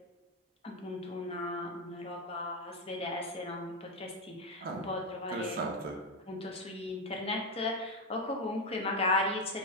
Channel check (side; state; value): both; normal; correlation 0.09